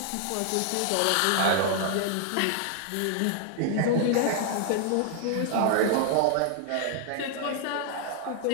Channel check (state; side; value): different; both; correlation -0.01